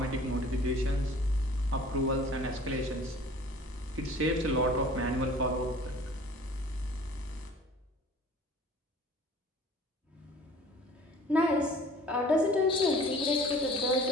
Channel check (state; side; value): normal; both; correlation 0.48